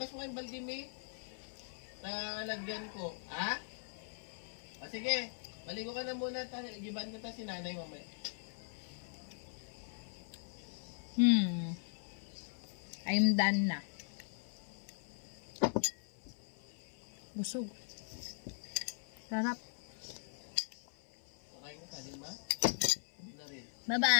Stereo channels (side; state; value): right; silent; 51 dB below the other